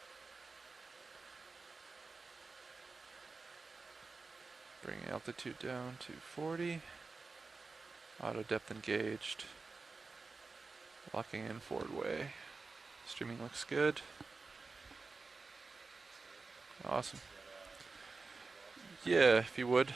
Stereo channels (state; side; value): quieter; left; 4.1 dB